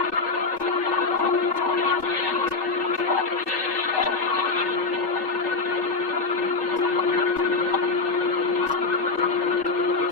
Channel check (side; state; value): right; quieter; 4.0 dB